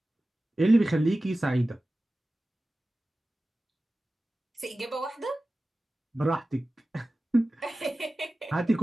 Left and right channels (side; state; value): both; normal; correlation 0.96